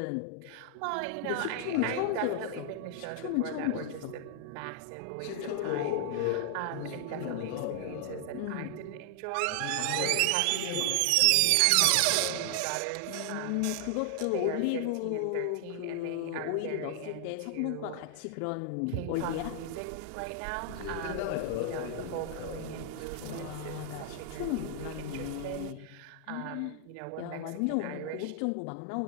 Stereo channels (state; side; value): different; both; correlation 0.00